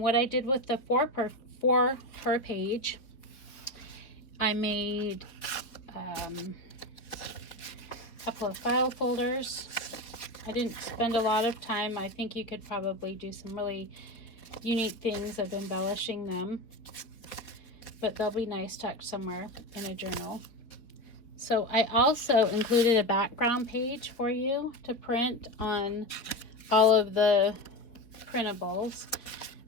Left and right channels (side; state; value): right; late; 4.4 ms